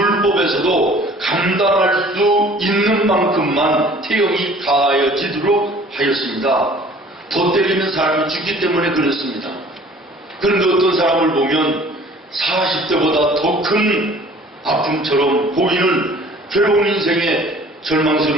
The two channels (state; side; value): normal; both; correlation 0.51